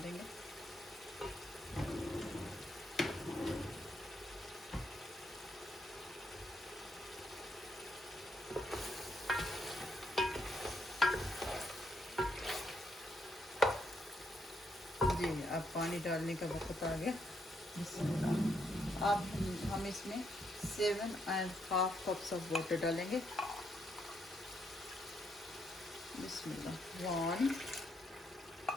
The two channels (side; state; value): both; normal; correlation 0.76